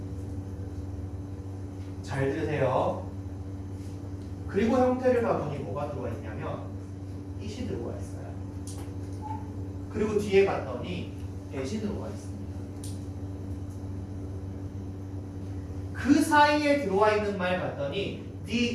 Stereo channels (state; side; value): identical; both; correlation 1.00